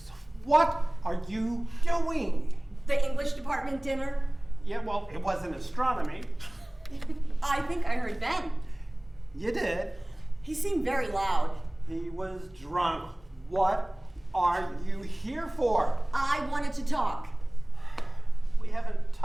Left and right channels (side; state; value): left; noise; hum, 29 dB below the sound